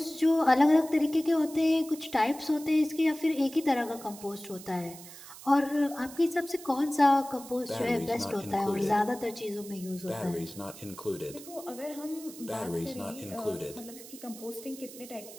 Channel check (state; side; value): noise; right; hiss, 16 dB below the sound